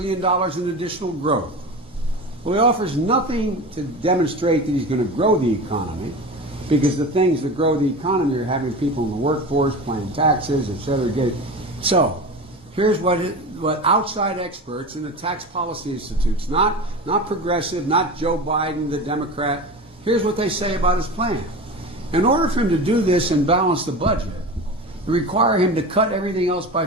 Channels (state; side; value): normal; both; correlation 0.29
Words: in additional growth. Well, he offers nothing to demonstrate that he's going to grow the economy, because the things that grow the economy are having people in the workforce, paying taxes, etc. So, here's what outside experts in the tax policy institutes, not progressive, not Joe Biden, the Democrat, here's what they say about his plan. In order for him to do this and balance the budget, it require him to cut everything else by